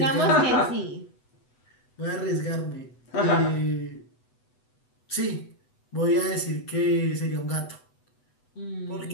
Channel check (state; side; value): late; right; 8.0 ms